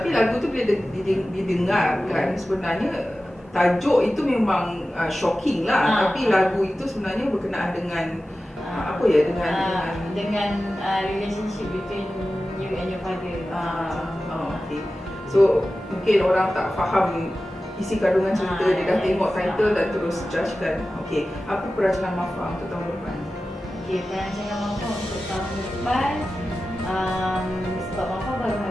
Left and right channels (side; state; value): both; normal; correlation 0.94